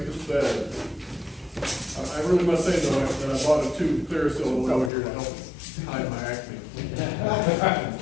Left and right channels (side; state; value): right; drops out; at 4.9 s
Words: us better. I really must say though, that I bought a tube of clear silver over here to help hide my acne.